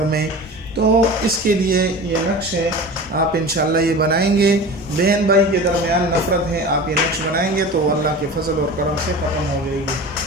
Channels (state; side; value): normal; both; correlation 0.34